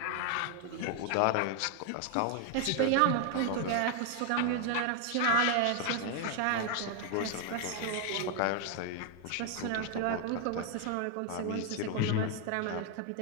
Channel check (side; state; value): both; different; correlation 0.01